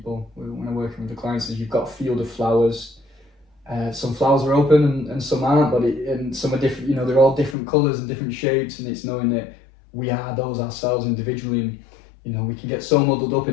when I'm working with the clients is you've got a field of flowers. Some flowers are open and some aren't, and some are different. They're all different colours and different shapes, and it's knowing that we are those ourselves individually. And, we can get so muddled up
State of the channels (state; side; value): drops out; right; at 7.6 s